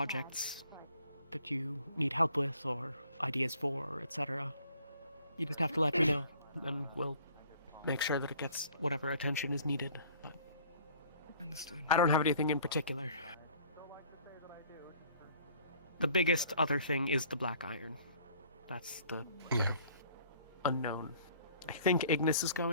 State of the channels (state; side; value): inverted; both; correlation -0.55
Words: that you need help with, or ideas for, etc., you just have to let me know, and we'll make sure that it gets whatever attention is needed. But Understood. I don't have anything in particular. The biggest other thing is the black iron. That's the unknown. I think Ignis is